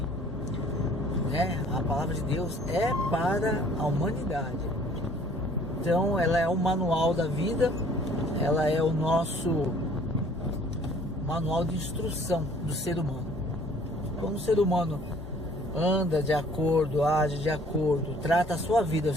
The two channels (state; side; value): normal; both; correlation 0.55